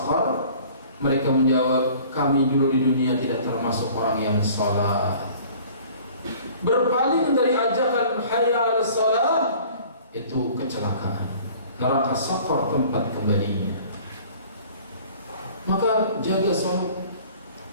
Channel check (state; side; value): inverted; both; correlation -0.49